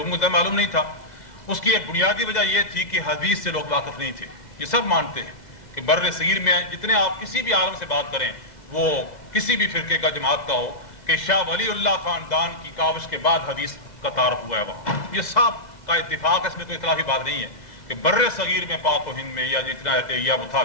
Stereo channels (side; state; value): right; late; 2.0 ms